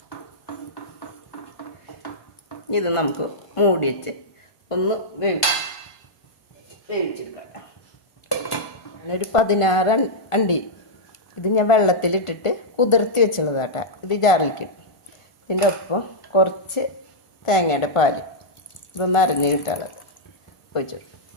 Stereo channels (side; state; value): right; late; 1.4 ms